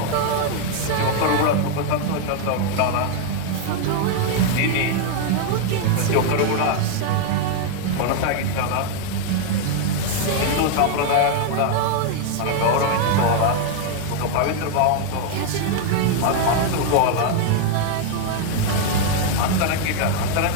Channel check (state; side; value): different; both; correlation 0.00